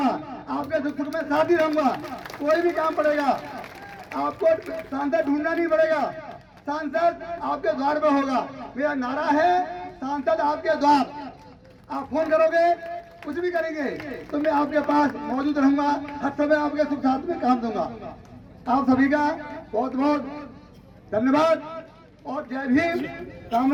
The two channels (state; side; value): identical; both; correlation 1.00